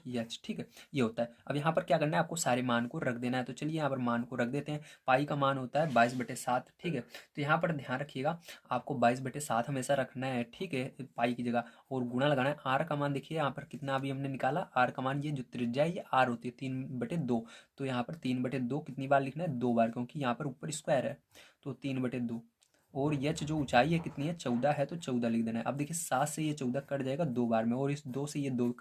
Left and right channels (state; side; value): identical; both; correlation 1.00